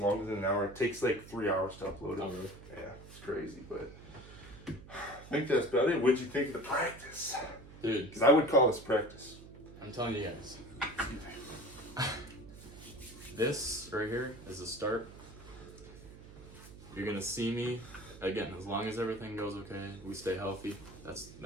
than an hour. It takes like 3 hours to upload it. Oh, really? Yeah, it's crazy, but I think that's about it. What'd you think of the practice? Dude. Because I would call this practice. I'm telling you guys. This right here is the start. You're going to see me, again, as long as everything goes okay, we stay healthy,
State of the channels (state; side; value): noise; right; hum, 17 dB below the sound